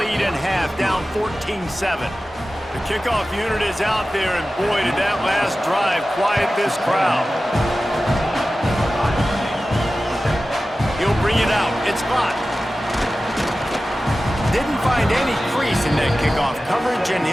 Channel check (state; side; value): normal; both; correlation 0.95